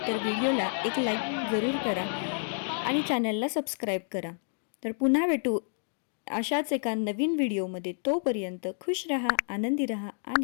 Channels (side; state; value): right; silent; digital silence